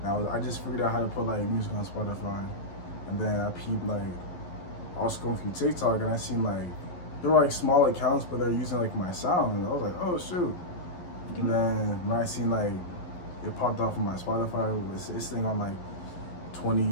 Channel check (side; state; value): right; late; 11 ms